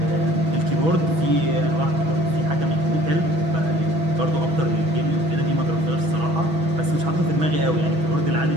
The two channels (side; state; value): left; late; 6.2 ms